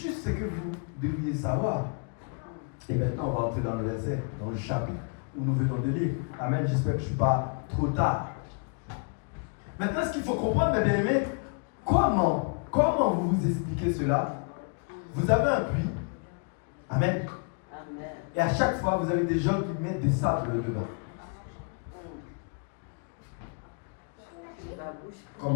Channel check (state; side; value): quieter; right; 39.4 dB